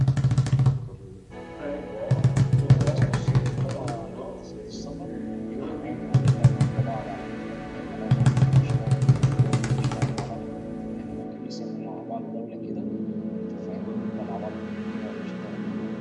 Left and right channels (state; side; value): identical; both; correlation 1.00